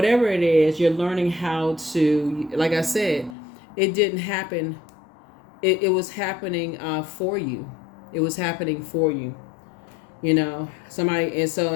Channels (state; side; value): drops out; right; at 3.4 s